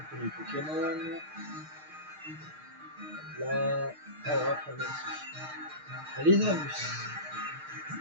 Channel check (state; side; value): late; left; 6.5 ms